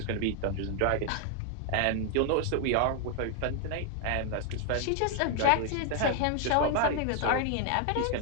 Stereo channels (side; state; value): both; different; correlation 0.00